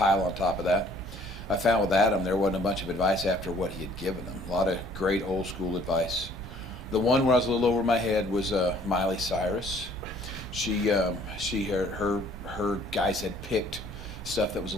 on top of that. I found with Adam there wasn't a bunch of advice after what he had given them. A lot of great old school advice. The one where I was a little over my head was Miley Cyrus. Her guys had picked stuff that was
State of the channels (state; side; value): normal; both; correlation 0.58